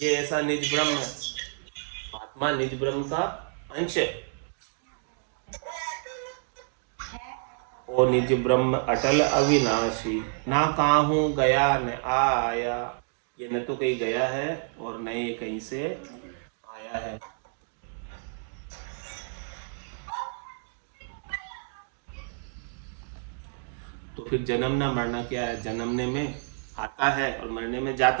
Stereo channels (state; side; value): silent; left; digital silence